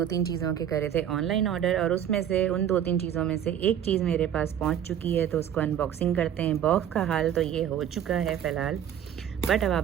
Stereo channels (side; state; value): left; quieter; 9.8 dB